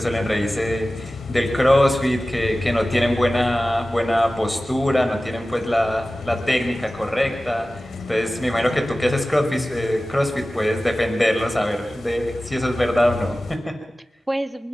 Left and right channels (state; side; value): normal; both; correlation 0.96